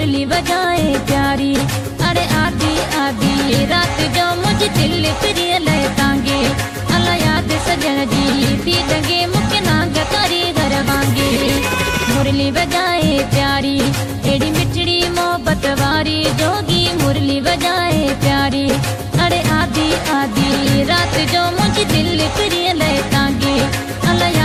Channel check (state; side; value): identical; both; correlation 1.00